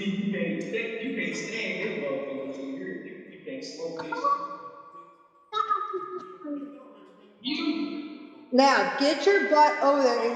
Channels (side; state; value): both; identical; correlation 1.00